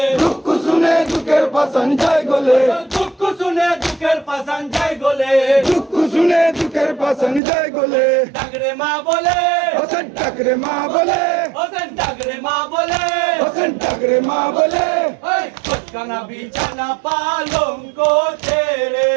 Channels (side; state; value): left; drops out; at 7.4 s